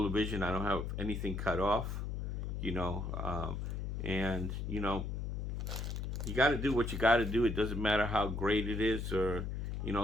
the vision. I don't have anything cut off, you know. And, you know, you got to do what you got to do. It doesn't matter how great it is, or, you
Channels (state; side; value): noise; left; hum, 3 dB below the sound